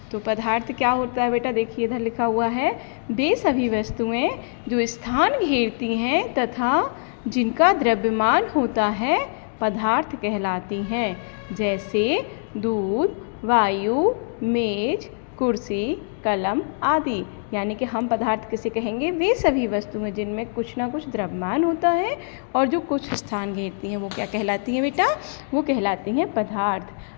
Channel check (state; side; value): silent; right; digital silence